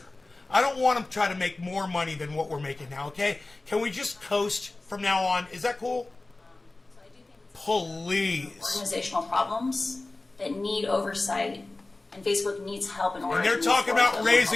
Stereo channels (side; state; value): right; quieter; 3.1 dB